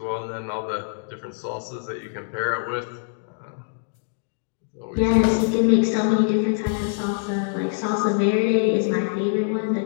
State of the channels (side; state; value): right; silent; digital silence